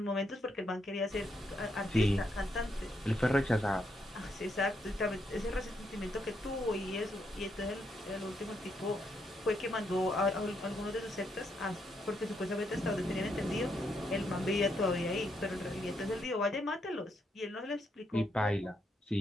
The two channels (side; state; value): both; normal; correlation 0.78